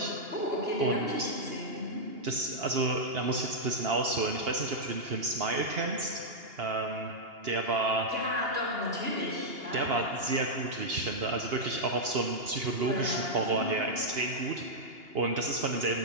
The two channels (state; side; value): late; left; 2.8 ms